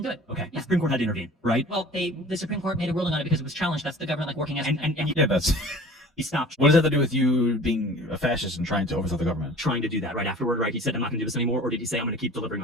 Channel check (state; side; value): normal; both; correlation 0.44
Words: do it. Okay, the Supreme Court had to intervene, right? Well, the Supreme Court made a ruling on it because it was challenged. That's the government like working as Yeah, that's. He stopped What does that have to do with you being a fascist and trying to overthrow the government? trying to do that right afterward, right? He said, I'm not going to do this anymore, or did he say, I'm going to keep delivering